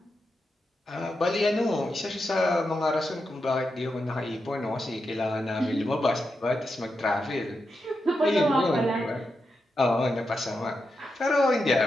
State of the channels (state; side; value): normal; both; correlation 0.87